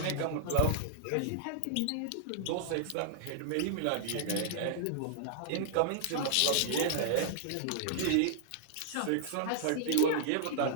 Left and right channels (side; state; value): both; different; correlation -0.01